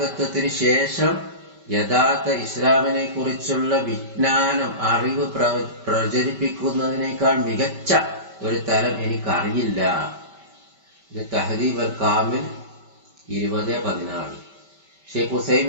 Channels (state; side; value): late; left; 5.2 ms